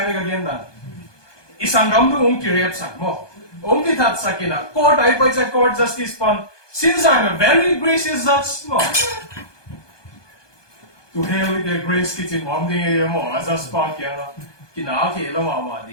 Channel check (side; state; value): right; late; 1.2 ms